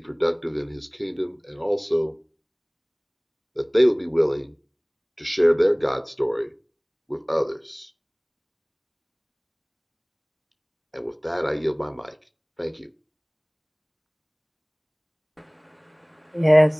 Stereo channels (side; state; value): both; identical; correlation 1.00